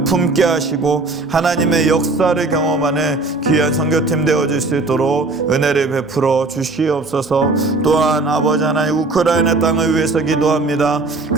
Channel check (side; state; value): left; quieter; 3.4 dB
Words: 품게 하시고 하나님의 역사를 경험하는 귀한 선교팀 되어질 수 있도록 은혜를 베풀어 주시옵소서. 또한 아버지 하나님 우크라이나 땅을 위해서 기도합니다.